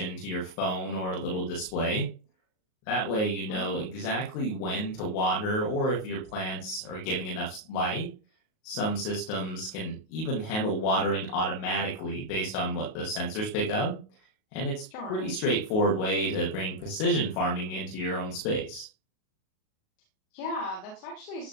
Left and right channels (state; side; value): late; right; 38 ms